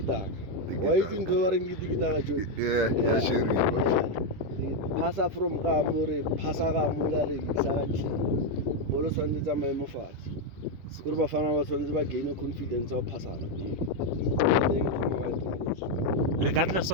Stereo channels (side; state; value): left; late; 11 ms